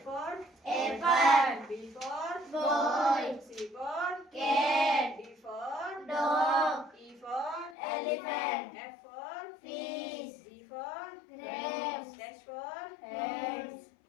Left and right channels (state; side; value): drops out; right; at 7.8 s